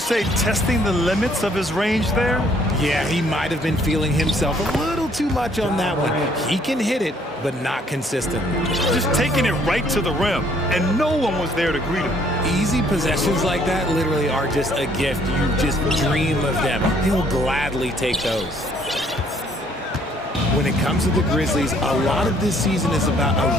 testing the limits of his range there? Yeah, he might have been feeling himself a little too much on that one. He can hit it, but not consistently. Just taking it right to the rim, and no one was there to greet him. Easy possessions like that literally are just a gift. You just dream of them. He'll gladly take those. When it comes to the Grizzlies, a lot of this season is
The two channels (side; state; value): both; normal; correlation 0.63